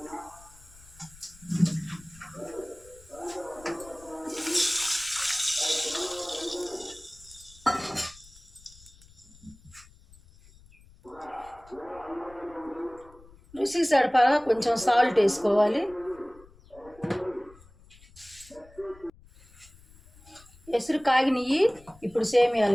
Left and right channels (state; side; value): noise; left; rumble, 24 dB below the sound